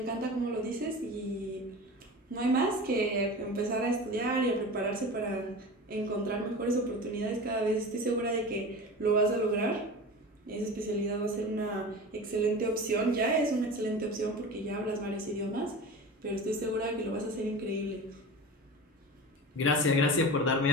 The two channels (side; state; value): both; normal; correlation 0.32